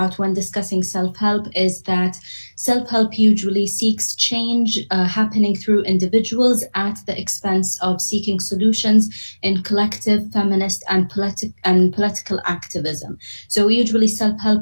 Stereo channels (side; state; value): both; inverted; correlation -1.00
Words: when discussing self-help is that self-help usually seeks change happening through individuals at the expense of seeking solutions in collective, feminist, and political activism. So usually